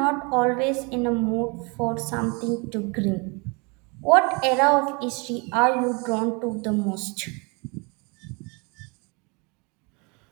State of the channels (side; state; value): left; quieter; 30.5 dB